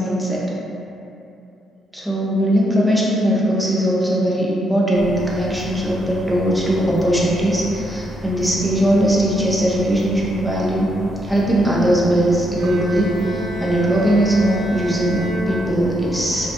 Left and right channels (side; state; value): both; normal; correlation 0.77